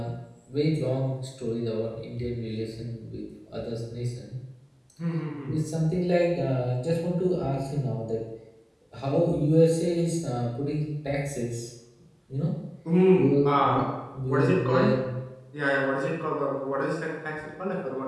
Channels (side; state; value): both; identical; correlation 1.00